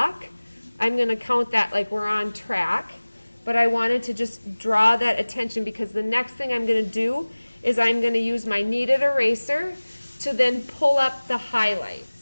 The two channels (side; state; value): both; inverted; correlation -1.00